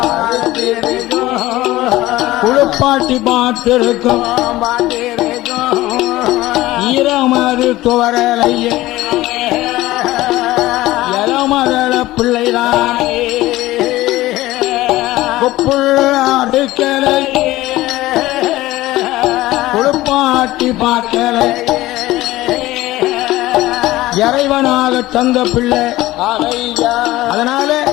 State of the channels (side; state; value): right; quieter; 17.2 dB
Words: குளிப்பாட்டி பாட்டு இருக்கும், ஈரமது துவரலையே இளமதள பிள்ளைதான் கொப்புள்ளாடுக்கலை குளிப்பாட்டி பாட்டலை இறைவ அப்பனாக தந்த பிள்ளை. ஆமையா அதனால